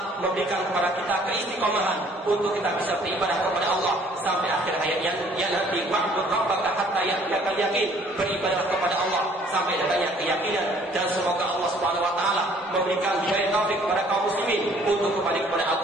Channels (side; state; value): both; normal; correlation 0.58